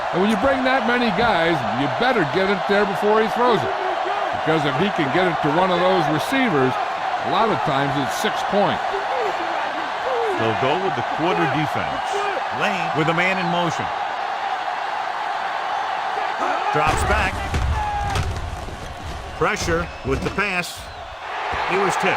And when you bring that many guys, you better get it there before he throws it. Because if he can get it to one of those receivers, a lot of times it's 6 points. They'll go with the quarter defense. Lane with a man in motion. Drops back. Pressure with the pass. He was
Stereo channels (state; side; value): identical; both; correlation 1.00